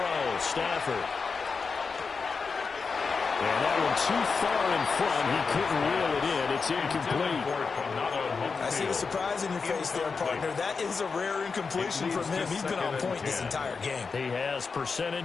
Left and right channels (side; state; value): right; quieter; 4.9 dB